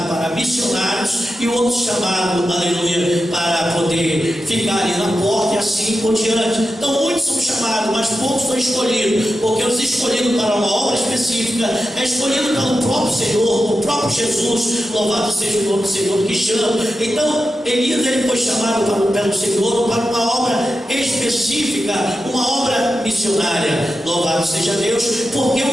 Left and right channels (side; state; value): both; normal; correlation 0.90